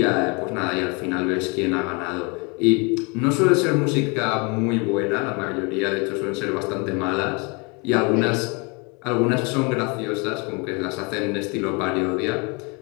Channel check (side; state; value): right; quieter; 30.6 dB